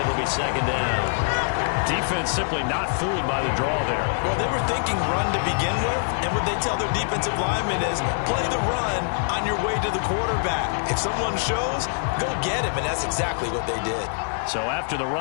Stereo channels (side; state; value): right; silent; digital silence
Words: be 2nd down. Defense simply not fooled by the draw there. Well, they were thinking run to begin with, and what they tell their defensive linemen is play the run on your way to the quarterback. If someone shows, go get him, and that's exactly what they did. So after the